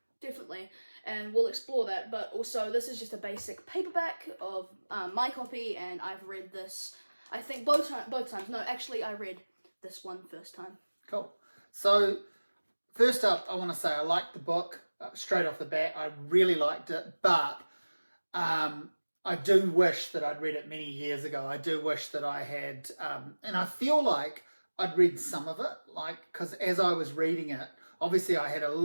definitely, and we'll explore that. But also, this is just a basic paperback of my copy, and I've read this. I think both times. No, actually, I read this one first time. Cool. So, first up, I want to say I liked the book straight off the bat. I really liked it, but I do wish that I'd read it many years ago. I do wish that I had, and I feel like I'd read some of it, because as I was reading it, obviously I had a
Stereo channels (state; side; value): inverted; both; correlation -1.00